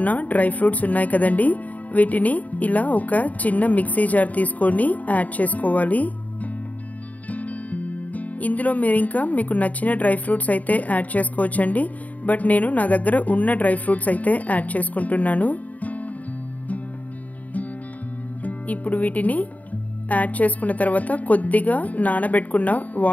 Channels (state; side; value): late; right; 0.073 ms